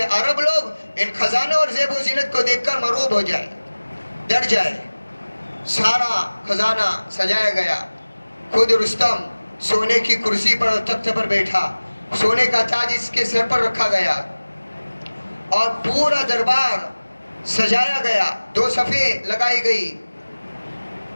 عرب لوگ ان خزانوں اور زیب و زینت کو دیکھ کر مرعوب ہو جائے، ڈر جائے۔ سارا خزانہ سجایا گیا، خود رستم سونے کی کرسی پر تخت پر بیٹھا، سونے کا تاج اس کے سر پر رکھا گیا اور پورا دربار سجایا گیا، 2 صفیں لگائی گئی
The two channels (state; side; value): inverted; both; correlation -1.00